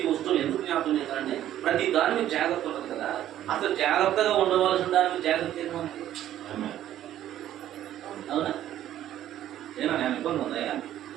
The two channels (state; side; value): quieter; left; 12.1 dB